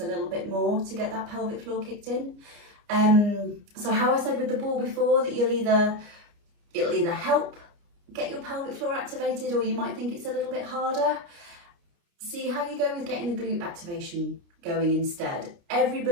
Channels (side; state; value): left; late; 29 ms